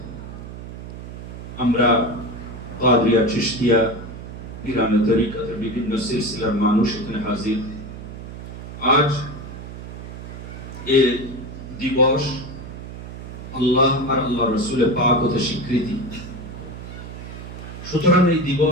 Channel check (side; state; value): right; noise; hum, 11 dB below the sound